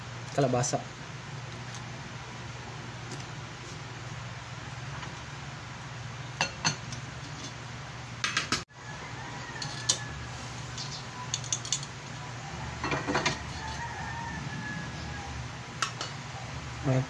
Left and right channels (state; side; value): identical; both; correlation 1.00